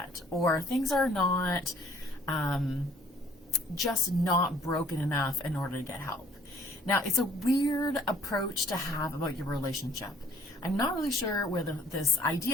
or things are not just not broken enough in order to get help. Now, it's a weird approach to have about your relationship. I'm not really sure where this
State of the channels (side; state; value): both; normal; correlation 0.59